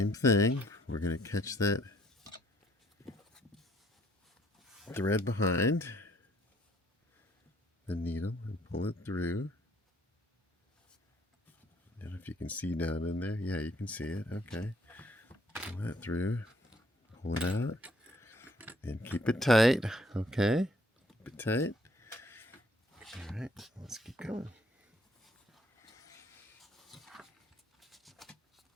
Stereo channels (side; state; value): both; normal; correlation 0.64